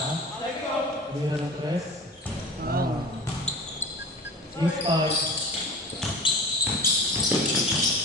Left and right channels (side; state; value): both; normal; correlation 0.36